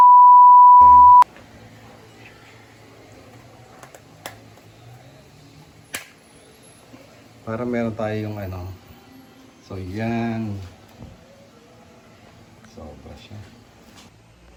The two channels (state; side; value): identical; both; correlation 1.00